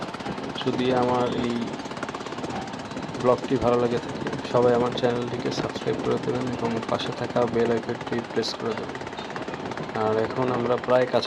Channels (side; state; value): both; identical; correlation 1.00